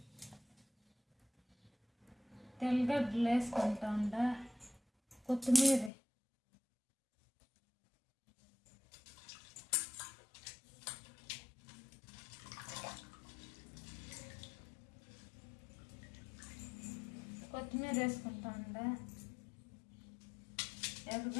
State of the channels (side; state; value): right; drops out; at 5.9 s